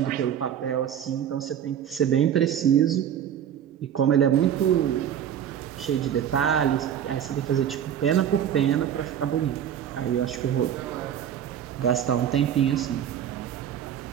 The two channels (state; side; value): quieter; left; 9.5 dB